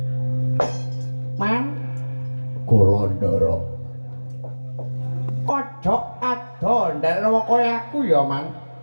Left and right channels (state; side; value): inverted; both; correlation -1.00